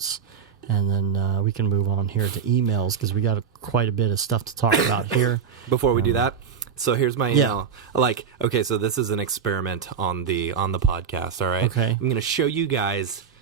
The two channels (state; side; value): quieter; left; 6.9 dB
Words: and then we can move on here to emails, because we got quite a bit of stuff to talk about here. Before we do that, so here's my email. So this is an experiment on the podcast, all right? Okay. I'm going to show you guys